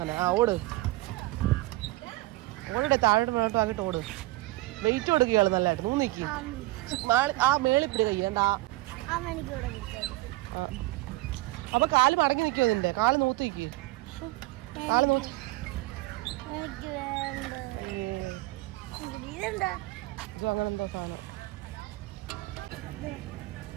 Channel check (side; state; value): left; quieter; 19.7 dB